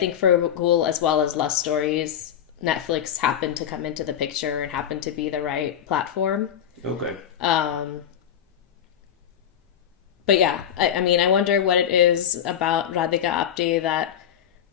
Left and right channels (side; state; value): right; quieter; 9.5 dB